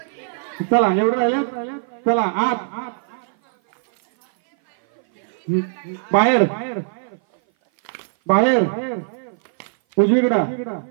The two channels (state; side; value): silent; left; 57 dB below the other